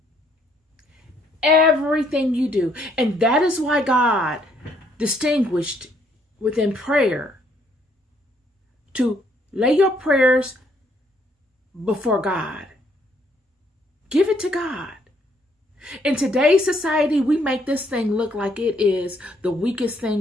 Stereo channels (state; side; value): normal; both; correlation 0.68